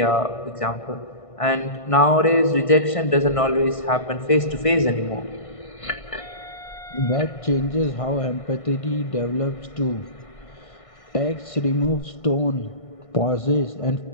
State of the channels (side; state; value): right; late; 1.6 ms